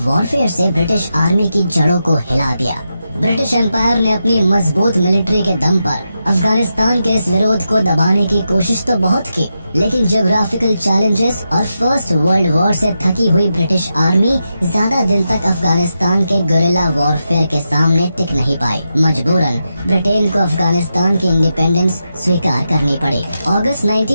वॉरफेयर से ब्रिटिश आर्मी की जड़ों को हिला दिया। ब्रिटिश एम्पायर ने अपनी मजबूत मिलिट्री के दम पर अफगानिस्तान के इस विरोध को दबाने की कोशिश तो बहुत की, लेकिन ज्योग्राफिकल चैलेंजेस और फर्स्ट वर्ल्ड वॉर से थकी हुई ब्रिटिश आर्मी ज्यादा दिन तक अफगानिस्तान के गुरिल्ला वॉरफेयर के सामने टिक नहीं पाई। मजबूरन ब्रिटेन को अफगानिस्तान की इंडिपेंडेंस स्वीकार करनी पड़ी। अगस्त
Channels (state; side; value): inverted; both; correlation -0.87